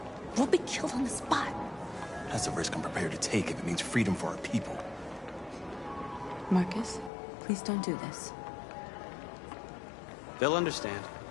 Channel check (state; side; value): drops out; right; at 7.1 s